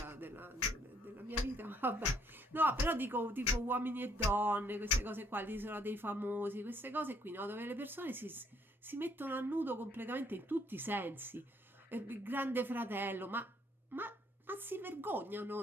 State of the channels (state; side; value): normal; both; correlation 0.67